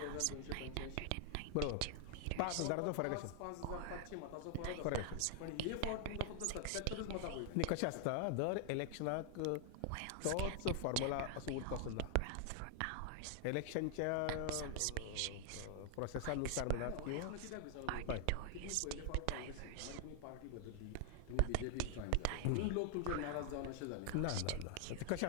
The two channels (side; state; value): both; different; correlation 0.00